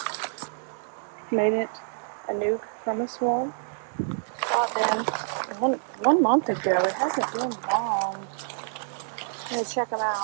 Made it a nuke from a swarm. Out there one month ago. It hasn't been long. I'm gonna check them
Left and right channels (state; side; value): silent; left; digital silence